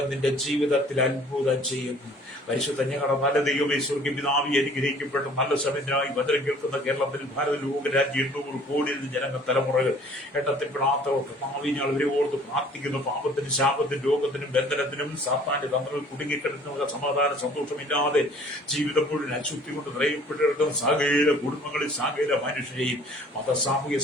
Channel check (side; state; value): both; normal; correlation 0.53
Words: നിന്റെ ജീവിതത്തിൽ അത്ഭുതം ചെയ്യും. പരിശുദ്ധ ഞങ്ങളുടെ നല്ല ദൈവമേ, സ്വർഗ്ഗ പിതാവേ, അനുഗ്രഹിക്കപ്പെട്ട നല്ല സമയത്തിനായി വചനം കേൾക്കുന്ന കേരളത്തിൽ ഭാരത ലോകരാജ്യം 800 കോടി ജനങ്ങൾ തലമുറകൾ എണ്ണത്തിൽപ്പെടാത്തവർക്ക് ഭാവിഞ്ഞാൾ ഇവരെ ഓർത്ത് പ്രാർത്ഥിക്കുന്നു. പാപത്തിനും ശാപത്തിനും രോഗത്തിനും ബന്ധനത്തിനും സാത്താന്റെ തന്ത്രങ്ങൾ കുടുങ്ങിക്കിടക്കുന്ന സമാധാന സന്തോഷമില്ലാതെ ജീവിതം മുഴുവൻ അശുദ്ധി കൊണ്ട് നിറയപ്പെട്ടിരിക്കുന്ന സകല കുടുംബങ്ങളിൽ സകല മനുഷ്യരെയും മത സാമൂഹ്യ